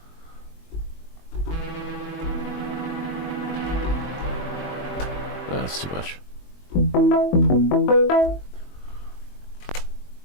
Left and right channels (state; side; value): late; right; 22 ms